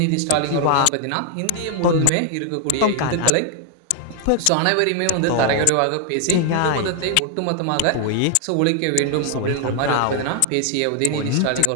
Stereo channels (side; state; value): both; different; correlation 0.00